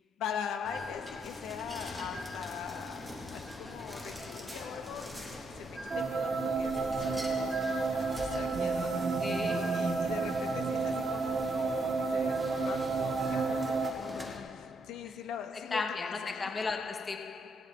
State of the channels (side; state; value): both; normal; correlation 0.76